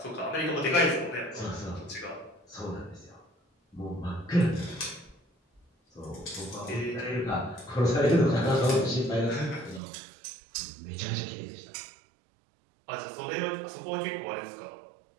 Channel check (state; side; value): drops out; left; at 9.8 s